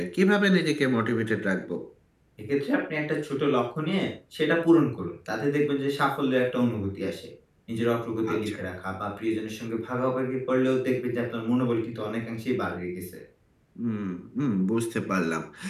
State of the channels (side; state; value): both; identical; correlation 1.00